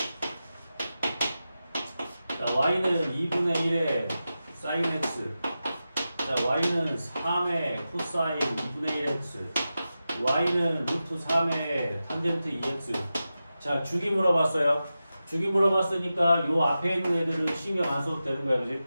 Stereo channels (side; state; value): both; inverted; correlation -0.92